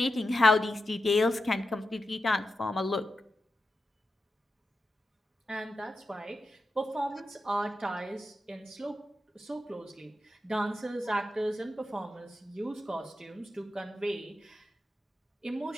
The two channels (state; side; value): normal; both; correlation 0.89